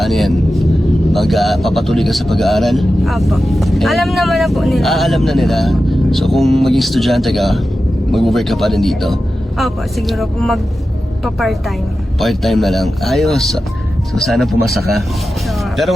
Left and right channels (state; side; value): normal; both; correlation 0.93